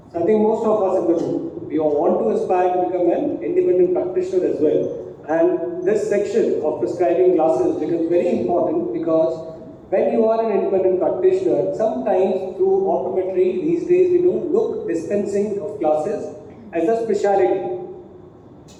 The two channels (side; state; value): both; identical; correlation 1.00